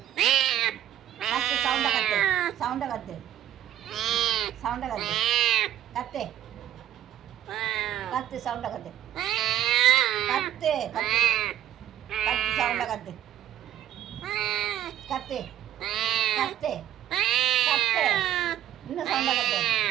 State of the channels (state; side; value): quieter; left; 11.8 dB